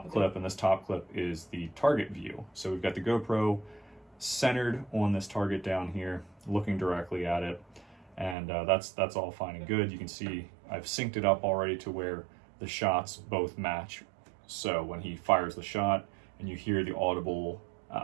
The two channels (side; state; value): left; drops out; at 8.3 s